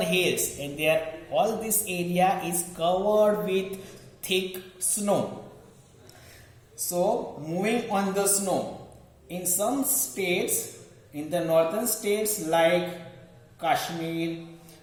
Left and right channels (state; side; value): identical; both; correlation 1.00